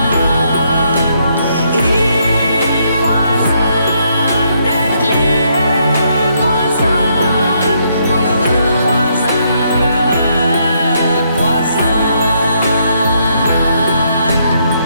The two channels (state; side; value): inverted; both; correlation -0.74